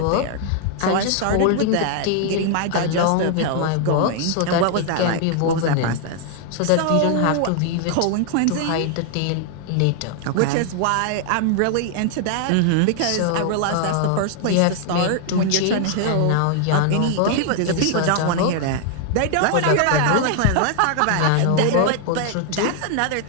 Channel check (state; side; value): different; both; correlation 0.00